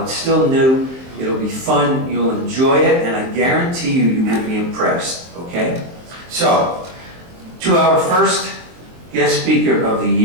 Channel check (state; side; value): late; left; 23 ms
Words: it's still new. It'll be fun, you'll enjoy it, and I guarantee you will be impressed, okay? So, to our first guest speaker of the